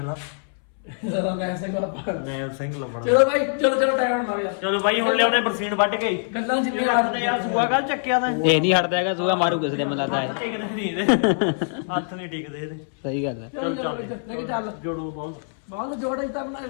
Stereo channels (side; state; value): right; silent; 63 dB below the other